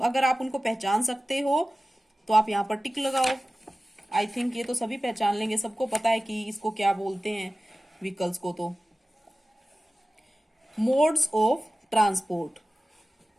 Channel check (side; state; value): both; normal; correlation 0.96